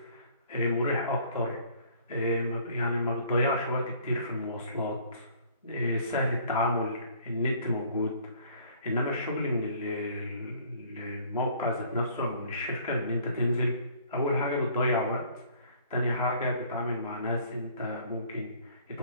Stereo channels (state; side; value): inverted; both; correlation -0.56